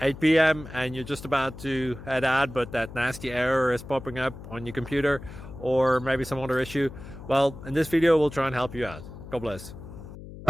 8 p.m. and you're just about to head out, but that nasty error is popping up on your computer, or maybe some other issue. Well, in this video we'll try and help you out. God bless.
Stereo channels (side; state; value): left; noise; hum, 14 dB below the sound